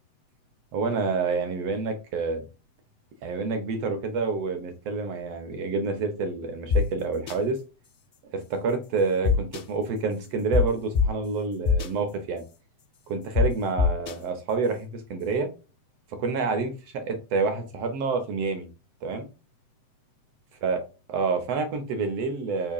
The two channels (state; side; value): late; left; 7.8 ms